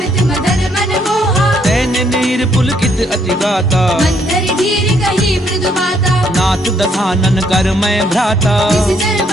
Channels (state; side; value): normal; both; correlation 0.69